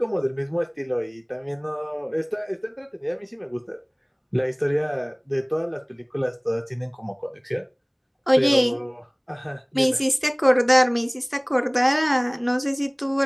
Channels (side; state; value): both; identical; correlation 1.00